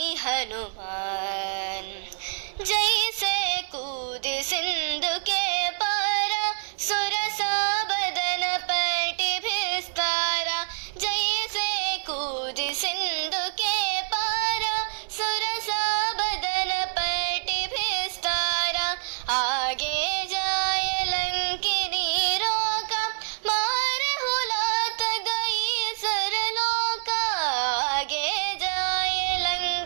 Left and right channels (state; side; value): silent; left; digital silence